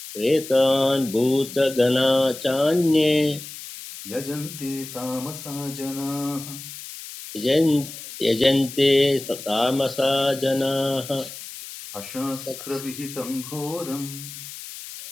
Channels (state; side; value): noise; left; hiss, 12 dB below the sound